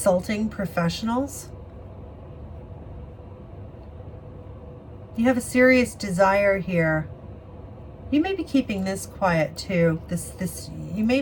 professionals. You have a serious desire here. You may be keeping this quiet too. You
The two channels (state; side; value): identical; both; correlation 1.00